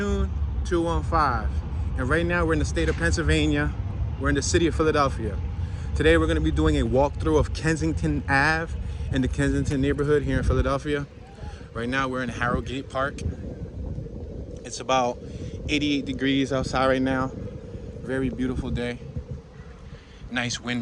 215, and right now we're in the state of Pennsylvania. We're in the city of Philadelphia. Today we're going to be doing a walkthrough of Kensington Ave in the Kensington neighborhood here in Philadelphia. Right now we're in Harrogate Park. It's about 88 degrees outside right now. Very beautiful day. Nice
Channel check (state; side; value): identical; both; correlation 1.00